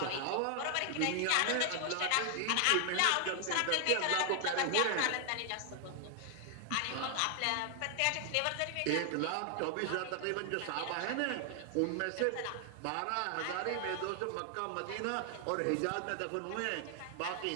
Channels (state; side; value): different; both; correlation 0.00